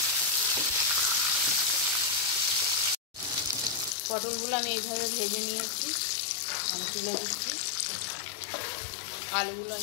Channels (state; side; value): drops out; right; at 4.0 s